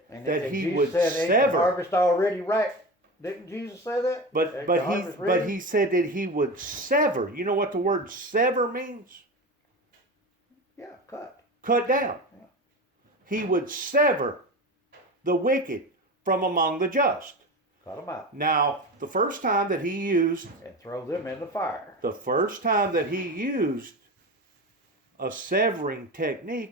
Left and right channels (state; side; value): normal; both; correlation 0.26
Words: that he Jesus would said, sever. ain't the harvest already ripe? Didn't Jesus say that? But he said that he would sever. You know what the word sever means? Yeah, cut. Cut down. Yeah. He would sever the wicked from among the just. Cut them out. Now, the first time that he used... And throw them in the fire. The first time that he used a severing